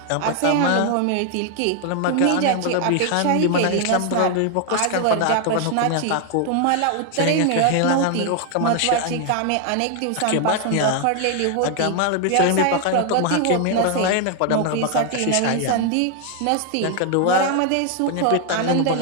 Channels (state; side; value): different; both; correlation 0.00